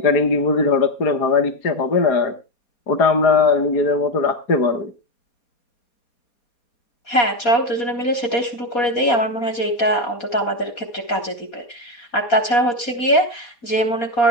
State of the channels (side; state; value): right; late; 4.2 ms